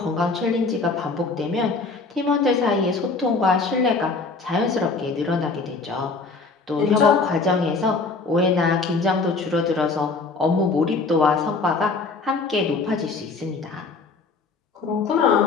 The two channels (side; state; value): right; quieter; 4.1 dB